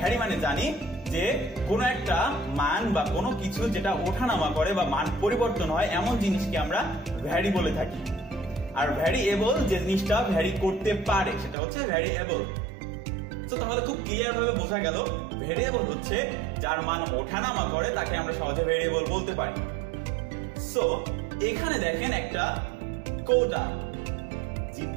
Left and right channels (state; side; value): drops out; left; at 11.6 s